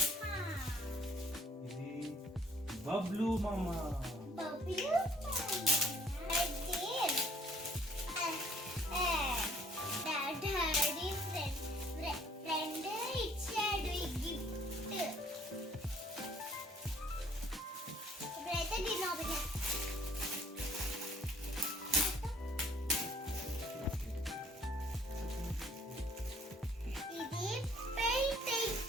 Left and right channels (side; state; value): both; normal; correlation 0.59